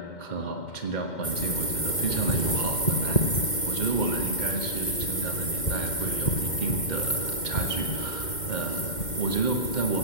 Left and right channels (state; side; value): late; right; 2.1 ms